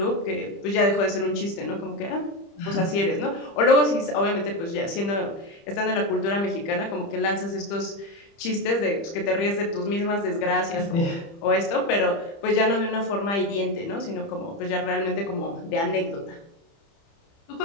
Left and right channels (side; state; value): right; late; 30 ms